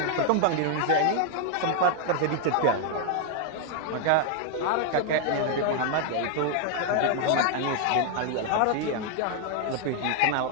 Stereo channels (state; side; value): different; both; correlation 0.00